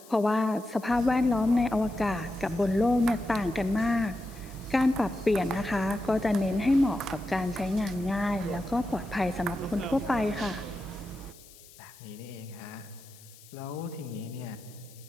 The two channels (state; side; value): noise; left; hiss, 22 dB below the sound